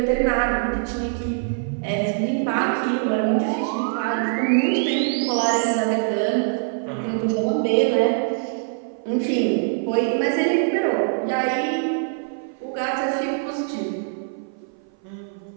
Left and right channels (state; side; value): silent; left; 57 dB below the other